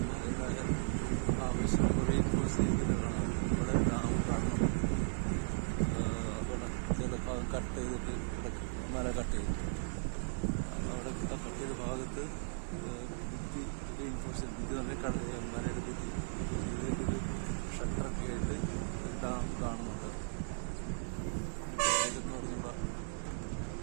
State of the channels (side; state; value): left; silent; digital silence